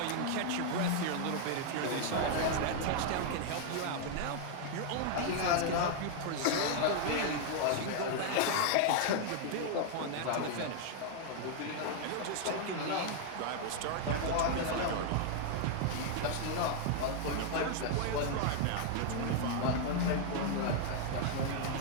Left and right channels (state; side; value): different; both; correlation 0.00